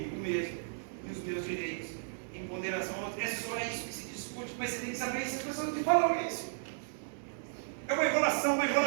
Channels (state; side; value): silent; left; digital silence